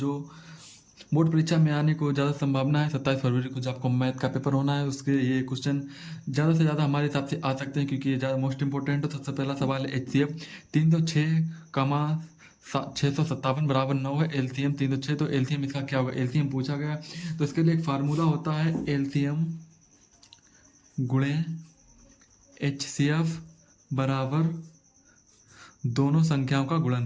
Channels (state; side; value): identical; both; correlation 1.00